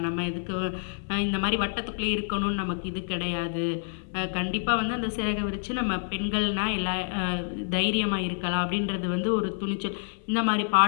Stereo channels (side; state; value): right; silent; 60 dB below the other